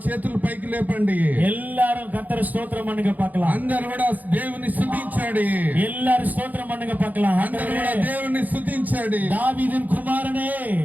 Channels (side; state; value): left; late; 0.081 ms